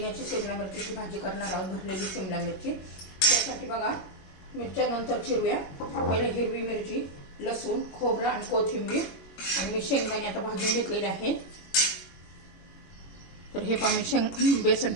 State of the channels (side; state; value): right; late; 22 ms